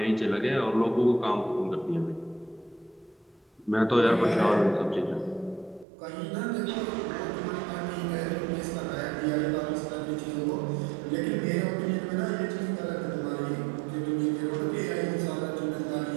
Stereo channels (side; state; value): left; drops out; at 5.9 s